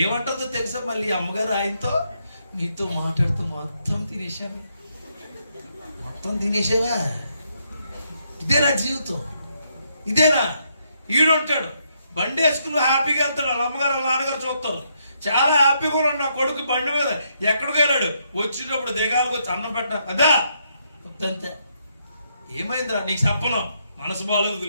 ఏమంటుందో తెలుసా? మళ్ళీ అమ్మగారు ఆయనతో, నీతో మాట్లాడుతూ మొత్తం తినేసావా? ఇదేనా జీవితం? ఇదేనా? ఈడుంటాడు బండి వేసుకుని హ్యాపీగా వెళ్తాడు, వాళ్ళ అమ్మగారు వాళ్ళ నాన్నగారు చూస్తారు. చాలా హ్యాపీగా ఉన్నాడు నా కొడుకు బండి మీద. ఎక్కడికి వెళ్ళాడు, వచ్చేటప్పుడు దిగాలకు వచ్చి అన్నం పెట్టా అదా అంతే. ఏమైందిరా నీకు చెప్పను, మనసు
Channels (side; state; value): both; inverted; correlation -0.76